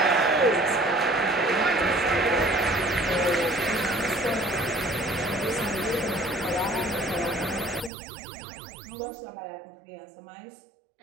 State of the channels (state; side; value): drops out; left; at 7.9 s